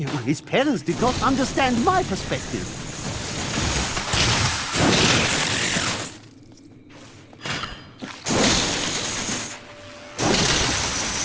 his parents did not understand my perspective.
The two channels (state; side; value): identical; both; correlation 1.00